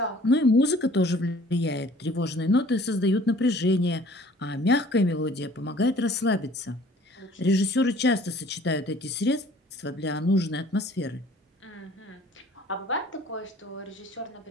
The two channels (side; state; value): both; normal; correlation 0.52